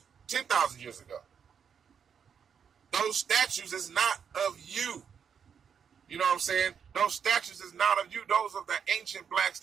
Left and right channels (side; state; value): left; quieter; 7.2 dB